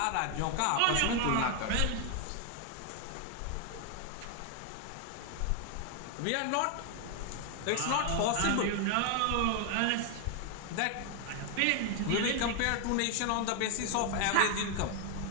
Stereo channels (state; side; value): different; both; correlation 0.01